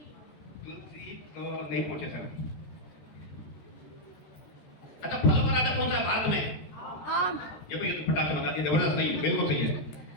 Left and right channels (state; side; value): late; right; 13 ms